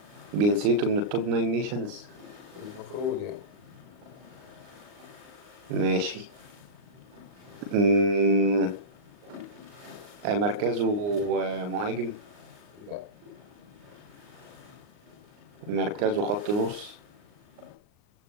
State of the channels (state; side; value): late; left; 39 ms